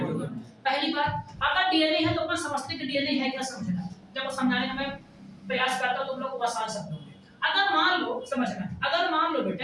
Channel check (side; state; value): both; identical; correlation 1.00